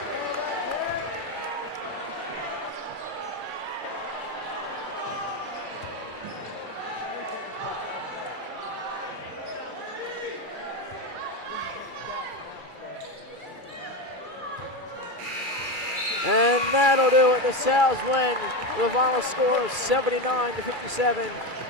And that'll do it. The Sal's win with a final score of 79-57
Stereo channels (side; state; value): left; late; 2.3 ms